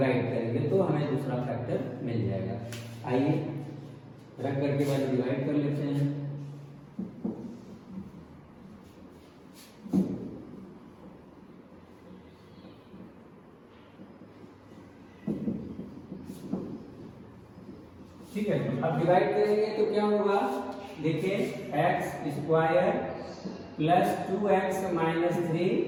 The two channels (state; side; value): identical; both; correlation 1.00